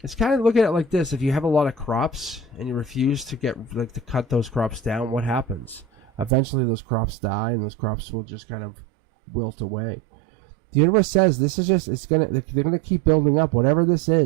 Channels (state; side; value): drops out; left; at 6.3 s